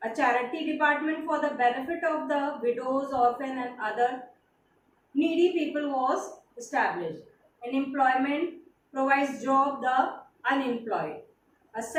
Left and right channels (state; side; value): identical; both; correlation 1.00